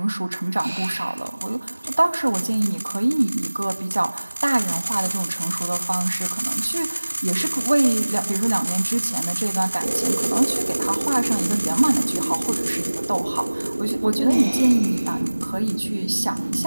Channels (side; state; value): both; inverted; correlation -1.00